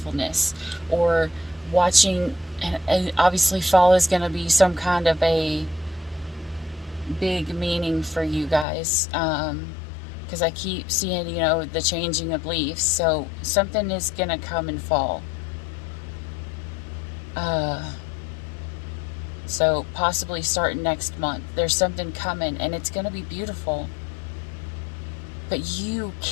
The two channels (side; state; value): right; drops out; at 8.7 s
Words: or watching, and obviously fall is going to be some kind of a big meaning for you guys, because I keep seeing, you know, the changing of leaves, so something is going to come in fall. So possibly starting next month, there's something coming, and it's going to be beautiful. But you